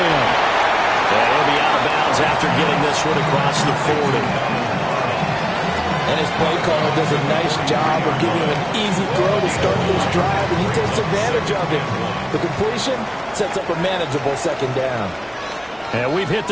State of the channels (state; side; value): identical; both; correlation 1.00